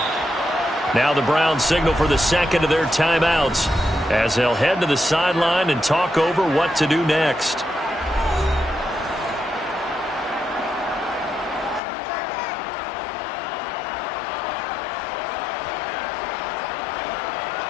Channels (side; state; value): right; drops out; at 11.8 s